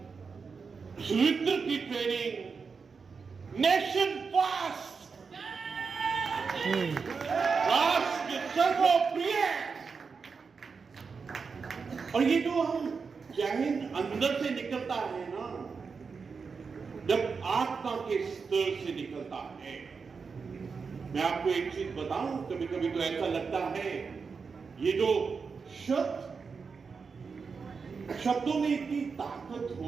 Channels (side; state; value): left; quieter; 5.2 dB